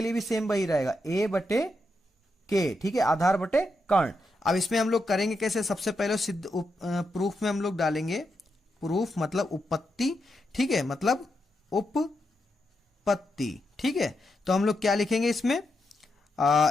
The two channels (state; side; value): normal; both; correlation 0.84